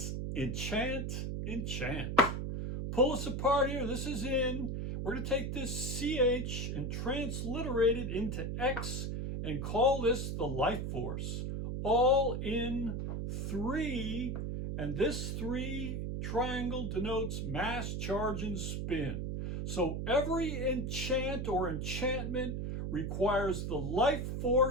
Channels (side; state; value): right; noise; hum, 2 dB below the sound